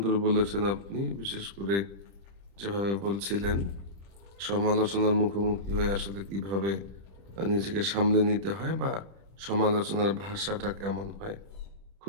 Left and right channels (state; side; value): late; left; 30 ms